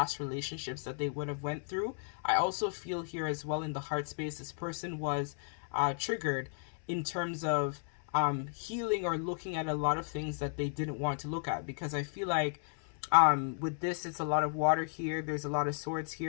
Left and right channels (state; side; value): silent; right; 55 dB below the other